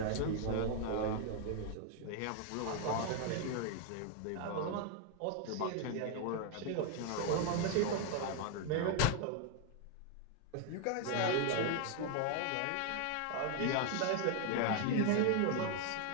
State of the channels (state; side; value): different; both; correlation 0.00